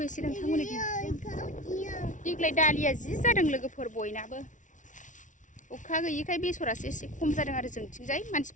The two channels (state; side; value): late; right; 0.37 ms